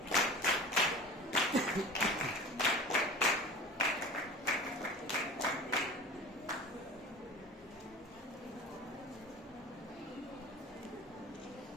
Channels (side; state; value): both; normal; correlation 0.37